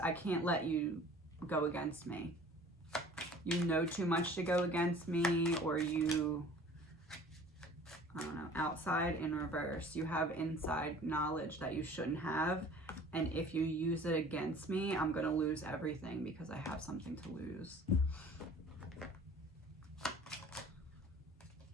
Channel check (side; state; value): both; normal; correlation 0.48